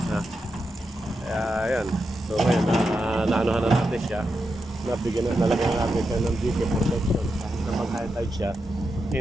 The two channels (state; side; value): normal; both; correlation 0.87